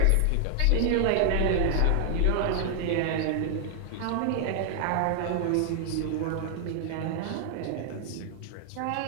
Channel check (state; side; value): different; both; correlation 0.00